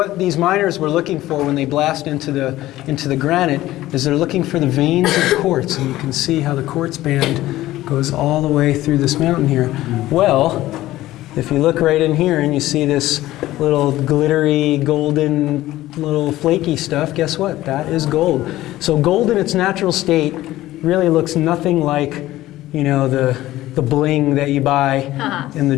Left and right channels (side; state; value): right; quieter; 15.8 dB